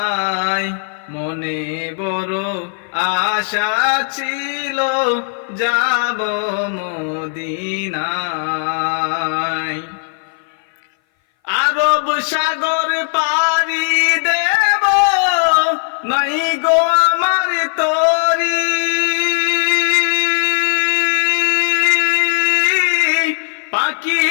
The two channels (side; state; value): right; silent; 59 dB below the other